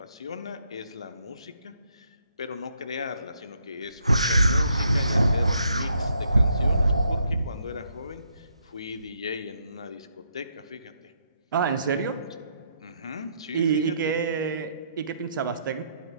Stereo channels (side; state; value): both; inverted; correlation -0.73